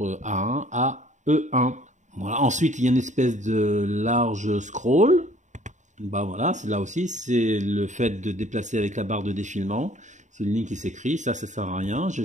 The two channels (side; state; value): left; late; 0.35 ms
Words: à E1. Voilà. Ensuite, il y a une espèce de large scroll. Bah voilà, c'est là aussi, c'est le fait de déplacer avec la barre de défilement. C'est une ligne qui s'écrit, ça sert à rien, je